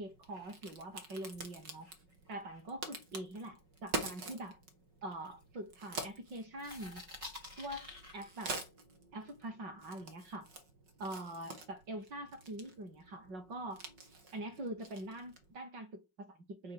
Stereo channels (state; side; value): late; left; 5.4 ms